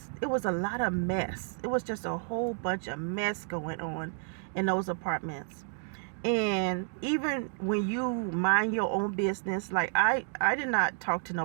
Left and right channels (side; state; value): left; silent; 57 dB below the other